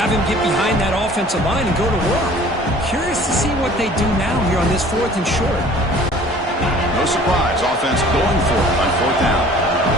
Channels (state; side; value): normal; both; correlation 0.49